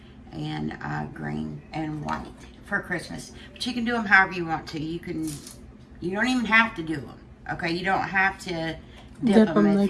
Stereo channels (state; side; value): identical; both; correlation 1.00